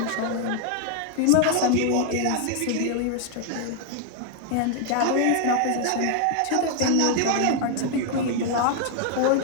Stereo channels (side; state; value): both; different; correlation 0.00